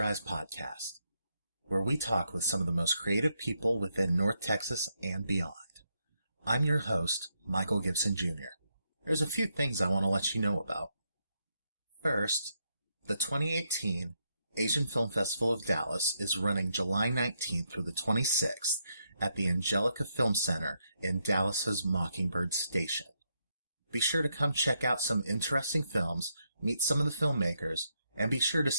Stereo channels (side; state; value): both; inverted; correlation -0.79